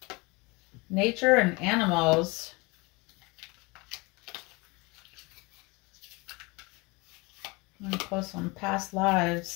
Nature and animals. I'm going to post some past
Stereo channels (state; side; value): quieter; right; 26.1 dB